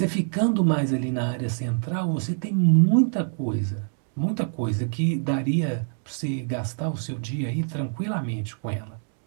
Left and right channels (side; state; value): left; silent; 61 dB below the other